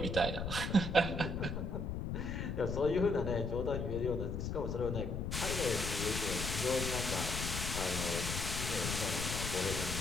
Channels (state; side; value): noise; left; rumble, 3 dB below the sound